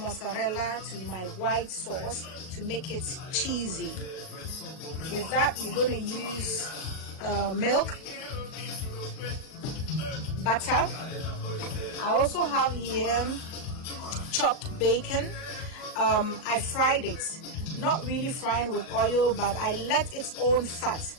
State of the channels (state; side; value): late; right; 38 ms